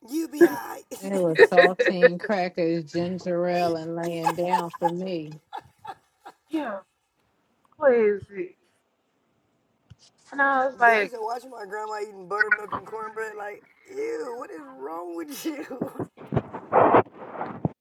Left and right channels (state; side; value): identical; both; correlation 1.00